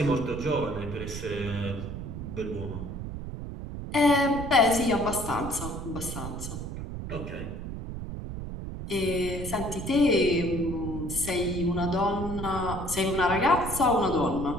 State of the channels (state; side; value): noise; right; rumble, 7 dB below the sound